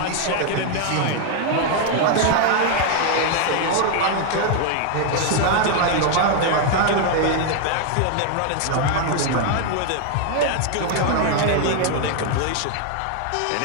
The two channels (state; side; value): different; both; correlation 0.00